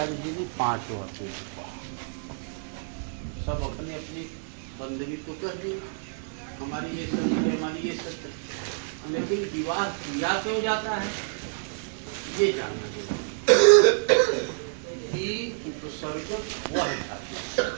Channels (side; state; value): left; silent; 59 dB below the other